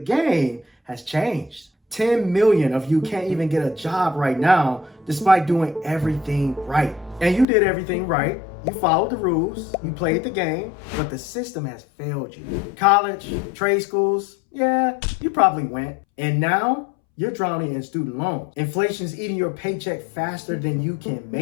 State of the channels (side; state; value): right; drops out; at 7.5 s